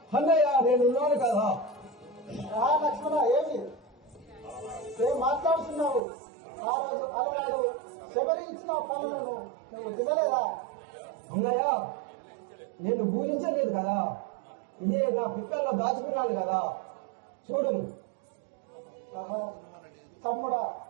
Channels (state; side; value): drops out; left; at 6.0 s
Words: అన్నయ్య, నేనున్నాను కదా. లక్ష్మణ, ఏం మాట్లాడుతున్నావు? ఆ రోజు అలనాడు శబరి ఇచ్చిన పనులను నువ్వు తినలేదా? అన్నయ్య, నేను పూజించలేదు కదా, ఇదే నా పిక్కల్లో దాచుకున్నాను కదా. చూడు తమ్ముడా,